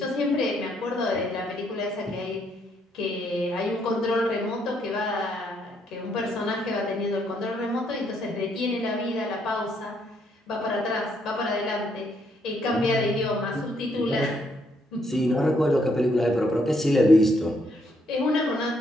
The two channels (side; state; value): both; normal; correlation 0.73